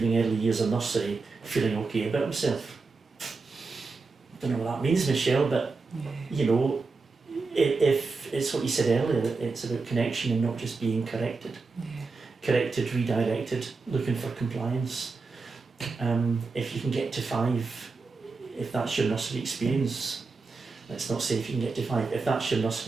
early years of nursery feeling okay about himself, I don't know what that means, Michele, but you know, if it's what you said earlier, it's about connection and not just being corrected. Corrected, redirected, looking for compliance. If you can get to 5, if that's your nursery experience, let's not say if you can get to 5, if that's your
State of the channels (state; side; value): quieter; left; 4.2 dB